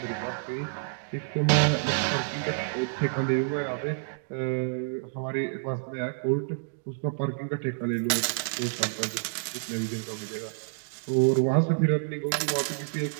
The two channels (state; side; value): silent; left; digital silence